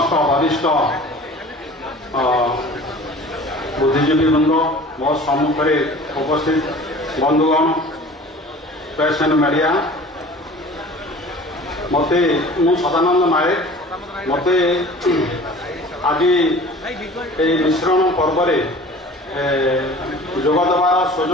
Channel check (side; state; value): both; normal; correlation 0.44